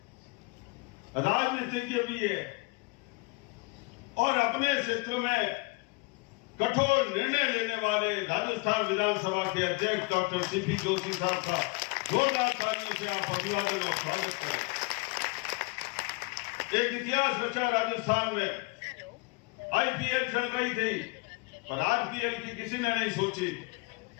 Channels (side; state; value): right; quieter; 27.5 dB